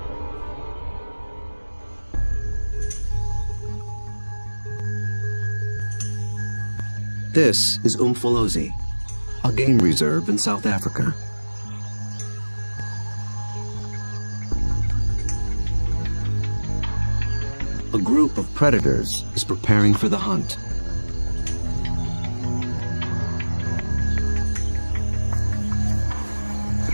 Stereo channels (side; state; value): both; inverted; correlation -1.00